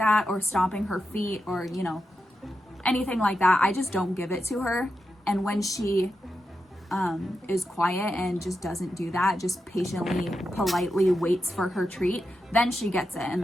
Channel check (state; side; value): normal; both; correlation 0.88